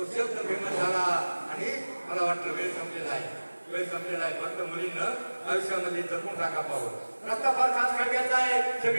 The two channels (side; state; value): both; inverted; correlation -1.00